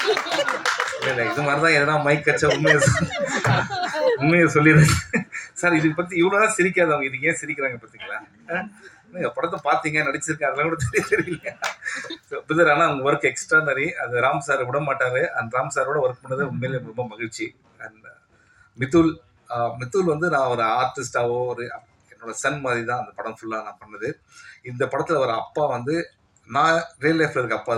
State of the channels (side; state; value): both; identical; correlation 1.00